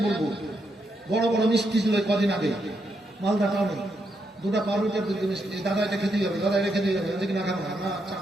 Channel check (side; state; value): both; normal; correlation 0.80